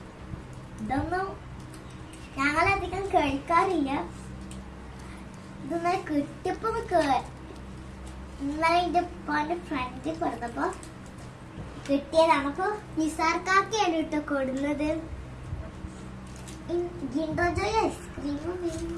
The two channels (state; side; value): identical; both; correlation 1.00